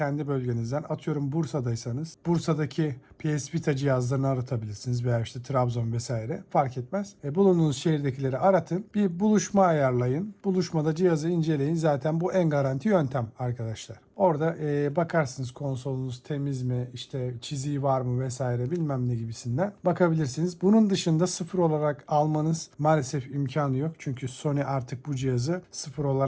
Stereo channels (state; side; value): identical; both; correlation 1.00